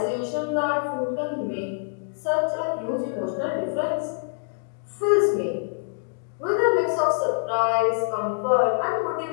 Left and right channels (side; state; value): right; silent; digital silence